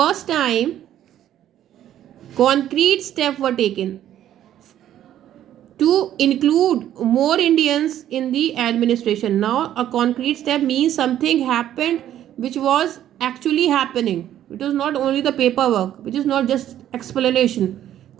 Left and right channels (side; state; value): left; quieter; 11.6 dB